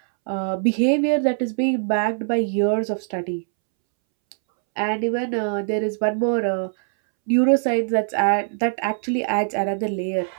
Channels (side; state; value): left; silent; 64 dB below the other